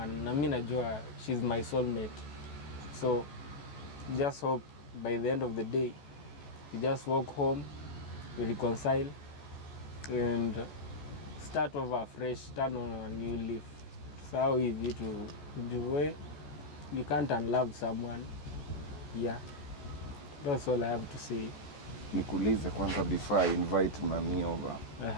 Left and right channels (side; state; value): right; late; 14 ms